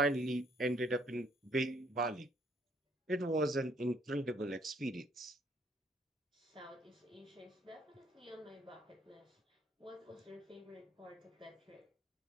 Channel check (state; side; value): normal; both; correlation 0.66